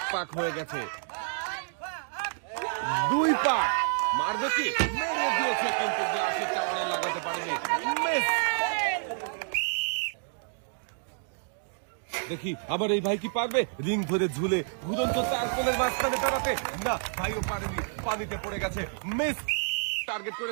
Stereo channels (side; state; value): left; silent; digital silence